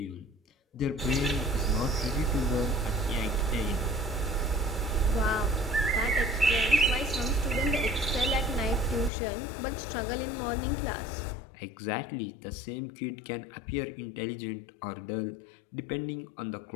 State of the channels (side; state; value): right; drops out; at 9.1 s